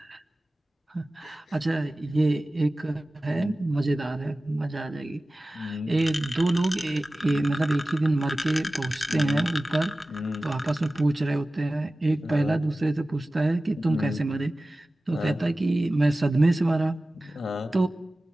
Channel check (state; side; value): normal; both; correlation 0.96